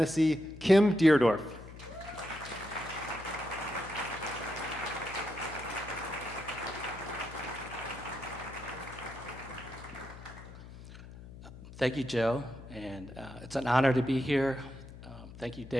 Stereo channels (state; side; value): noise; left; hum, 15 dB below the sound